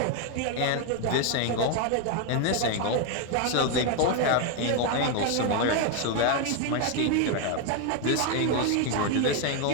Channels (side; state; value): both; different; correlation 0.01